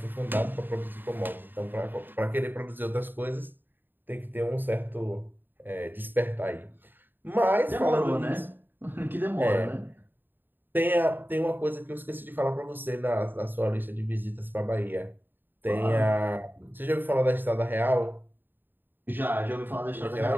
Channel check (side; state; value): left; late; 0.094 ms